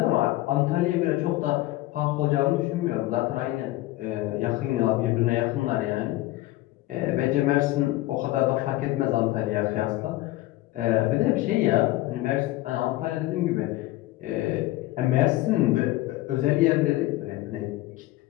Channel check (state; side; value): quieter; right; 17.4 dB